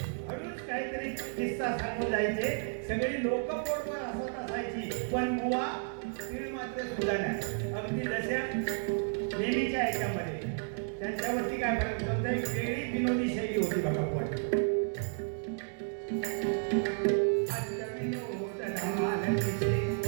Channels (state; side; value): silent; left; 56 dB below the other